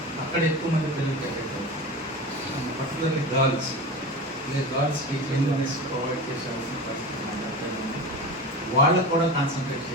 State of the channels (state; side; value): normal; both; correlation 0.28